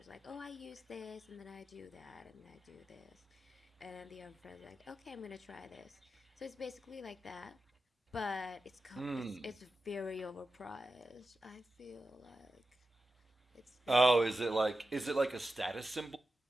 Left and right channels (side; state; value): both; normal; correlation 0.92